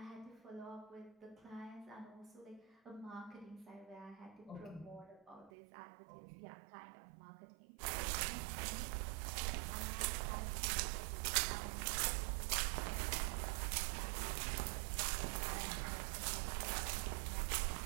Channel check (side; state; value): left; drops out; at 5.5 s